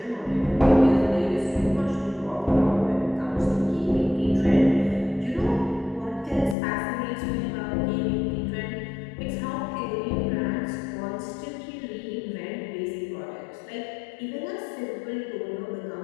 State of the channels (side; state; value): right; drops out; at 6.6 s